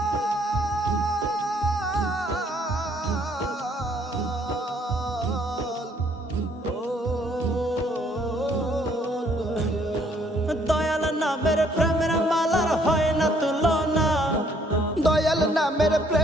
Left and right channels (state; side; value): normal; both; correlation 0.65